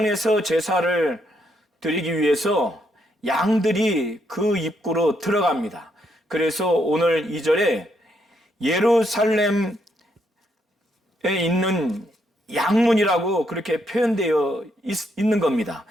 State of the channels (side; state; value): both; normal; correlation 0.76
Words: 제사를 드리기 위해서 양들이 그 입구로 들어갑니다. 그래서 오늘 2절에 예루살렘에 있는 양문이라고 그렇게 표현되어 있는 겁니다.